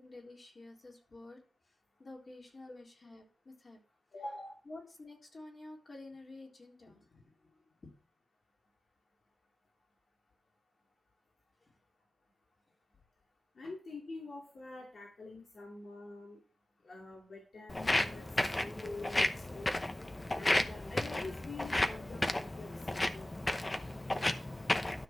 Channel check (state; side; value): normal; both; correlation 0.98